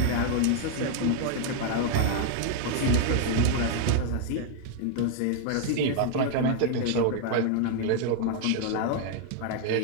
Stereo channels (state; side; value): different; both; correlation 0.00